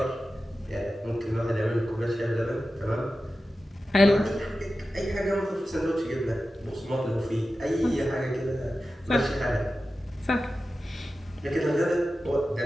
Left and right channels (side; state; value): both; normal; correlation 0.93